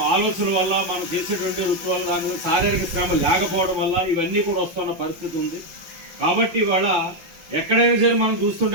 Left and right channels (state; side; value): late; left; 5.8 ms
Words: ఆలోచన వల్ల మనం చేసేటువంటి వృత్తి వల్ల దాని మీద శారీరక శ్రమ లేకపోవడం వల్ల ఇవన్నీ కూడా వస్తున్న పరిస్థితి ఉంది. కాబట్టి ఇవాళ ఎక్కడైనా సరే మనం